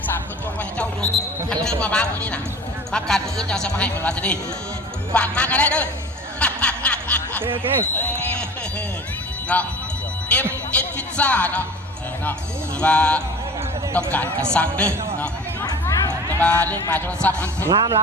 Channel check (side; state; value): both; normal; correlation 0.40